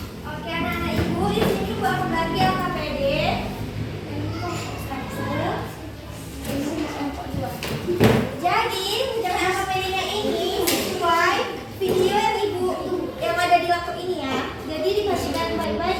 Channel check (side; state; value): both; identical; correlation 1.00